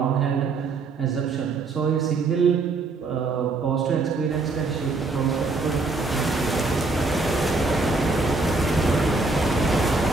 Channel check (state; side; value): quieter; left; 3.8 dB